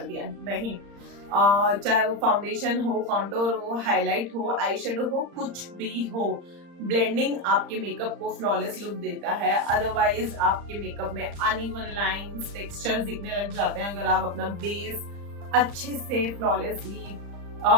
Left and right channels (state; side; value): late; left; 35 ms